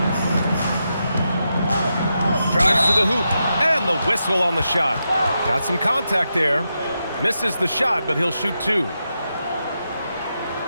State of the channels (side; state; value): both; inverted; correlation -0.86